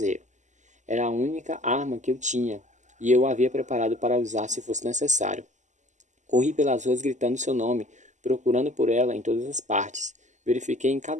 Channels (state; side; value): late; left; 0.34 ms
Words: Era a única arma que eu tinha, e eu a havia preparado para usar se fosse necessário. Corri pelas ruas gritando seu nome, procurando por ela em todas as partes. Verifiquei em